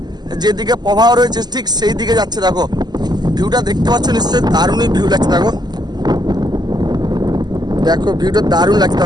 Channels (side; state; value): left; late; 0.20 ms